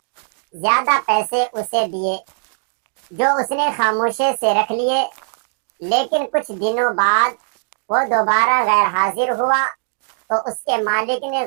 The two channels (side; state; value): left; silent; digital silence